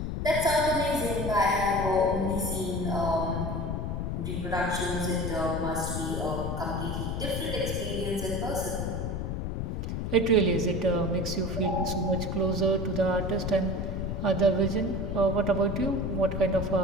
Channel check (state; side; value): noise; left; rumble, 2 dB below the sound